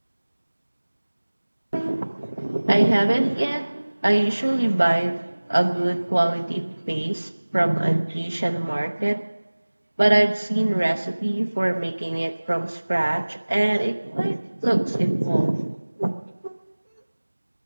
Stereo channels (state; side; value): inverted; both; correlation -1.00